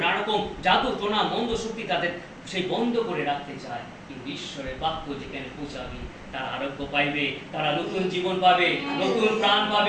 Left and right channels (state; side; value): identical; both; correlation 1.00